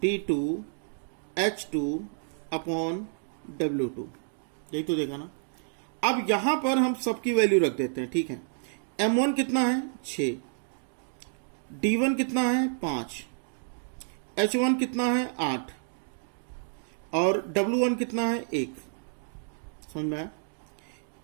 D2 H2 upon W2, यही तो देखा ना। अब यहां पर हम सबकी वैल्यू रख देते हैं, ठीक है। M1 कितना है 6, D1 कितना है 5, H1 कितना है 8 और W1 कितना है 1, समझ में आया।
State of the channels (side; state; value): left; silent; digital silence